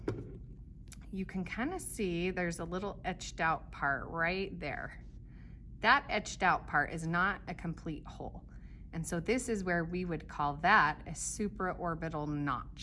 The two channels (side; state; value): both; identical; correlation 1.00